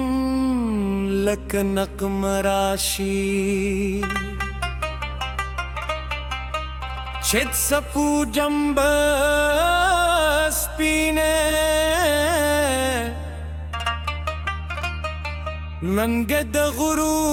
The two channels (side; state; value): both; identical; correlation 1.00